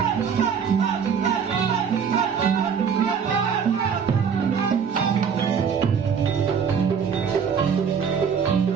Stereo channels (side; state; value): left; quieter; 6.8 dB